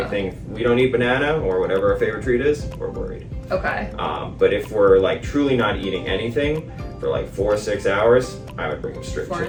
thing. If we don't eat banana, or whatever our favorite treat is, we're worried. Okay. But if we're like truly not eating anything for like 4 or 6 hours, I would bring them straight 4 to to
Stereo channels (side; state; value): both; identical; correlation 1.00